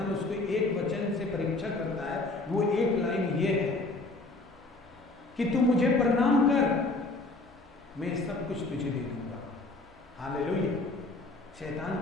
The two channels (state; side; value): quieter; right; 3.1 dB